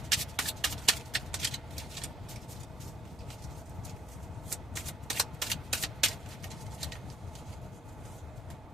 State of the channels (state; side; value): normal; both; correlation 0.67